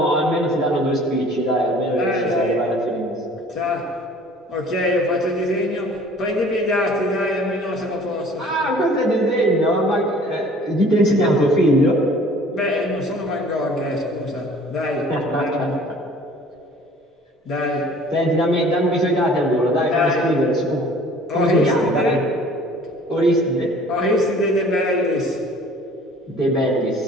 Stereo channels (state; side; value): normal; both; correlation 0.51